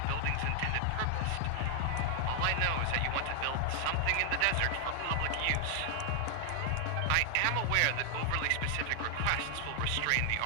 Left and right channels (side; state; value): both; different; correlation 0.00